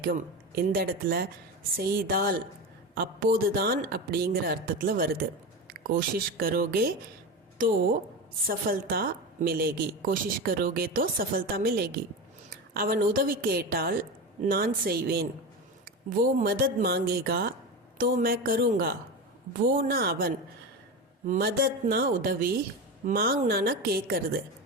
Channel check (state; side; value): normal; both; correlation 0.22